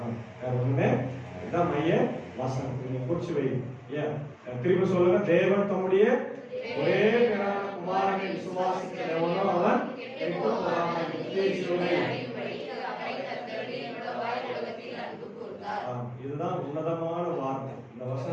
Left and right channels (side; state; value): both; identical; correlation 1.00